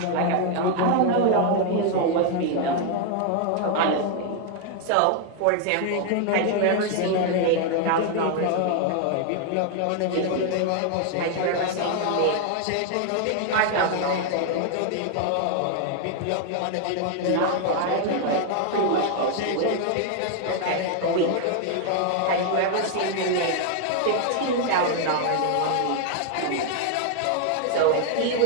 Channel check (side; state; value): both; different; correlation 0.00